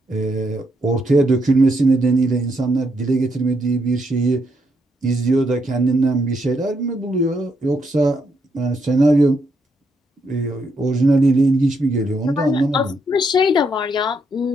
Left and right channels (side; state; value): both; normal; correlation 0.77